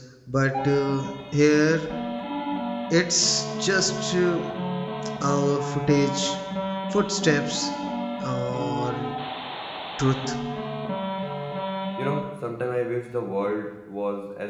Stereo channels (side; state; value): both; identical; correlation 1.00